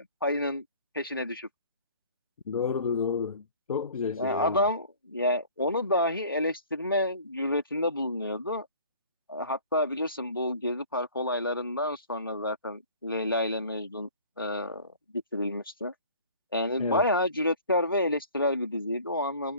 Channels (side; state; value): both; inverted; correlation -0.48